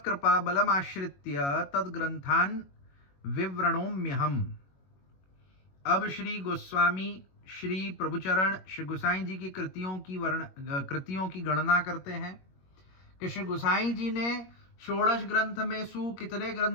तद्ग्रंथान् विवृणोम्यहम्। अब श्री गोस्वामी श्री प्रभुचरण श्री गुसाई जी की कृतियों की गणना करते हैं कि श्री गुसाई जी ने षोडश ग्रंथ में सु कितने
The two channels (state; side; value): late; right; 21 ms